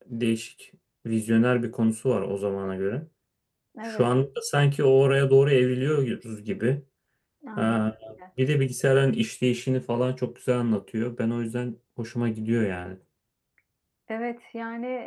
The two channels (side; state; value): both; identical; correlation 1.00